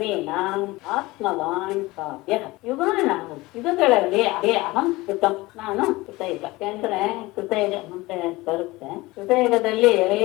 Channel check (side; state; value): right; quieter; 20.7 dB